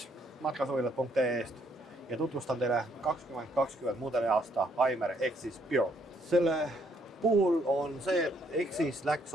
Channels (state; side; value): normal; both; correlation 0.70